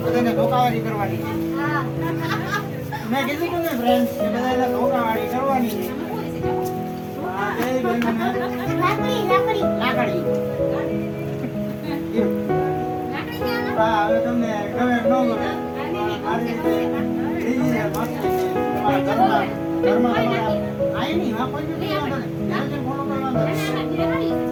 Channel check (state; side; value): identical; both; correlation 1.00